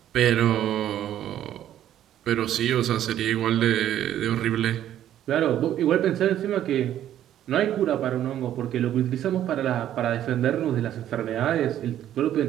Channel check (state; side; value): quieter; left; 11.6 dB